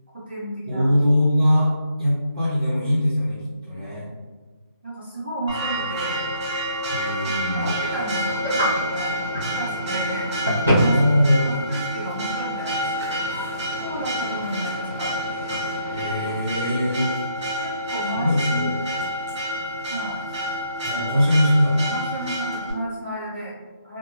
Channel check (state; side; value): inverted; both; correlation -0.71